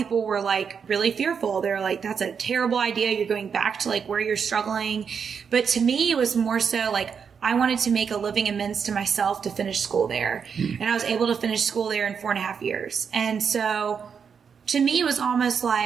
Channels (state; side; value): quieter; left; 6.6 dB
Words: were like really fearful. They're like, that's a terrible idea. You're going back to like where you're struggling. But to me, it was more so like, I wanted to make a living amends to myself to finish school there. And I was able to finish school there in 4.5 years. And so to me, it was almost